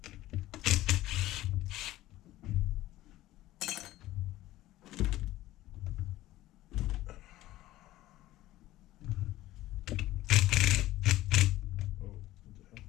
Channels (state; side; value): quieter; right; 15.8 dB